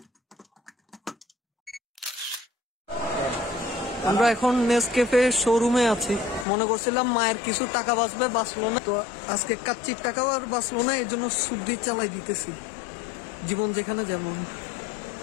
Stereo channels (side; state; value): right; drops out; at 6.5 s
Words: আমরা এখন নেসক্যাফে শোরুমে আছি। মনে করছিলাম মায়ের কিছু টাকা বাঁচবে, বাঁচলো না। তো আজকে কাচ্চির টাকাও আর বাঁচলো না, এই জন্য সুদ্দি চালাই দিতেছি, জীবন যেখানে যেমন।